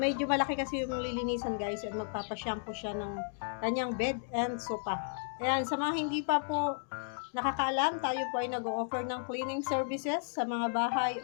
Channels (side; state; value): right; silent; digital silence